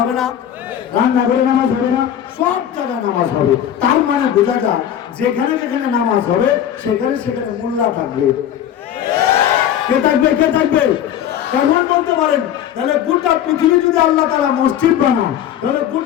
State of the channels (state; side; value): quieter; right; 10.3 dB